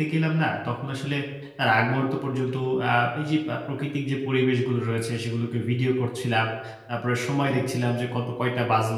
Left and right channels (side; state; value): both; identical; correlation 1.00